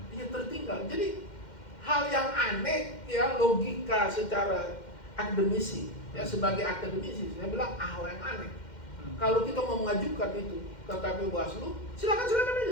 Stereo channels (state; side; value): late; right; 2.1 ms